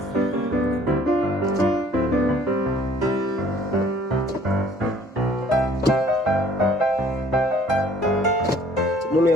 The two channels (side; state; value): both; normal; correlation 0.57